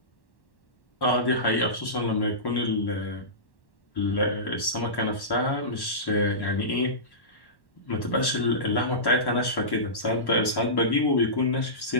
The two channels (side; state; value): right; late; 1.1 ms